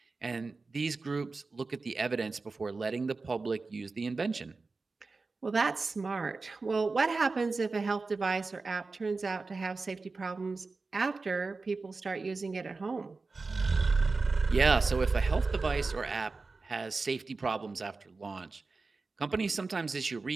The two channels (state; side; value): quieter; left; 3.9 dB